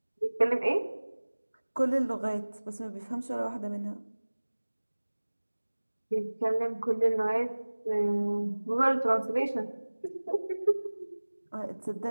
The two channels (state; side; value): inverted; both; correlation -1.00